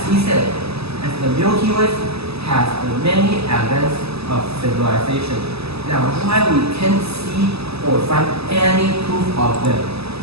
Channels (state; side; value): late; left; 0.79 ms